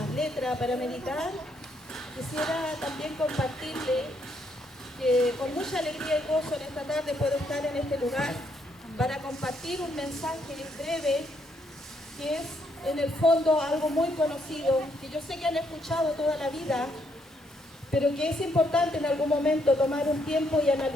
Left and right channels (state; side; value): normal; both; correlation 0.74